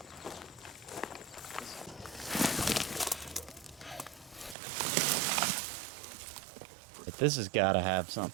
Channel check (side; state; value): left; drops out; at 4.5 s